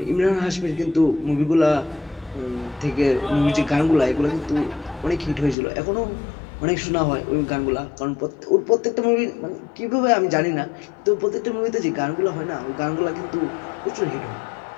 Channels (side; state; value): right; drops out; at 5.6 s